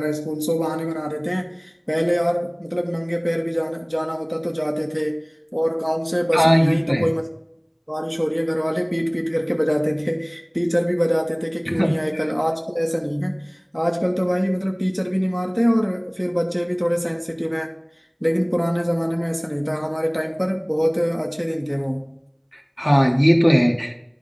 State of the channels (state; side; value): identical; both; correlation 1.00